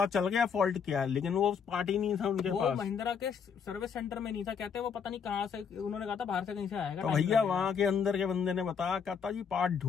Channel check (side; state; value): right; quieter; 6.7 dB